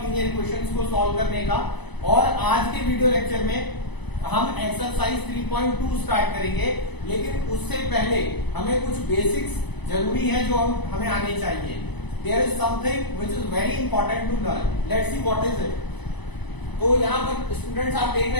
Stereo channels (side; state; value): right; late; 1.0 ms